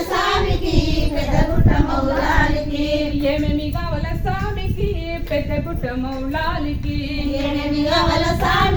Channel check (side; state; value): both; identical; correlation 1.00